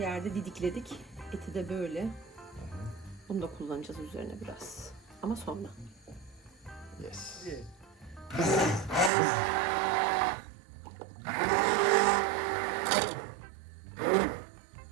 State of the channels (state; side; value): drops out; left; at 9.1 s